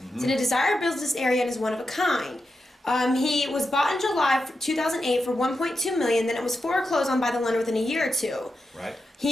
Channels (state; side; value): normal; both; correlation 0.88